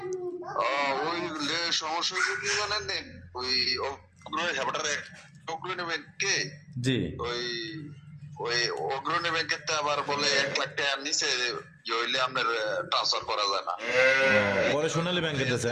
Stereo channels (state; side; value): identical; both; correlation 1.00